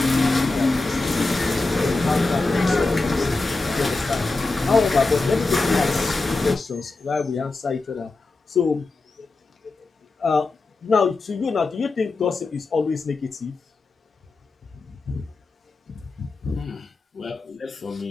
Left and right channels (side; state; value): right; quieter; 3.5 dB